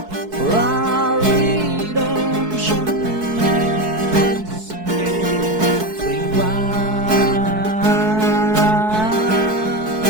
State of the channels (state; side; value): late; left; 4.6 ms